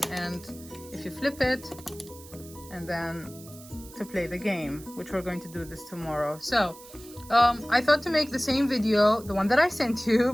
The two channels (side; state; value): right; noise; hiss, 19 dB below the sound